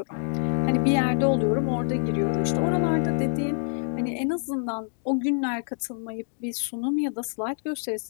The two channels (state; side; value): silent; right; 57 dB below the other